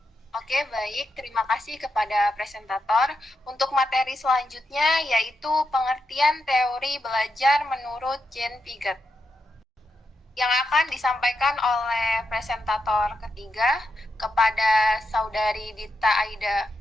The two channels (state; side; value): normal; both; correlation 0.85